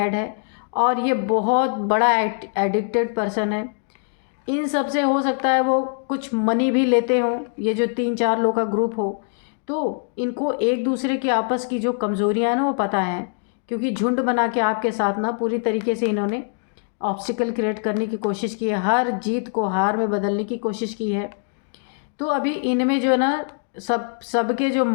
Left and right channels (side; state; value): right; silent; 57 dB below the other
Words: है और ये बहुत बड़ा एडिक्टेड पर्सन है। इन सब से हो सकता है वो कुछ मनी भी लेते हों, ये जो 3-4 लोग का ग्रुप हो। तो इनको एक दूसरे की आपस की जो कमज़ोरियाँ हैं ना वो पता है, क्योंकि झुंड बना के आपके साथ ना पूरी तरीके से इन्होंने ऑब्स्टिकल क्रिएट करने की कोशिश की है, हर जीत को हार में बदलने की कोशिश की है। तो अभी इनमें जो है ना, सबके जो